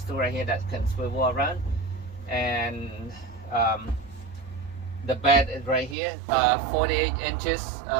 to right here that can swivel around. And the bed is right here, 48 inches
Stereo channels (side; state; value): left; drops out; at 6.0 s